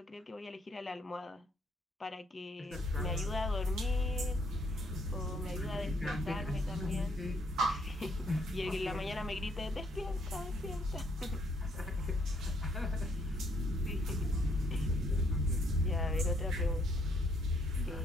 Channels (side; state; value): both; normal; correlation 0.69